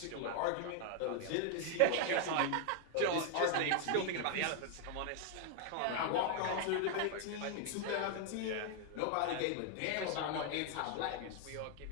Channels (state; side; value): different; both; correlation 0.00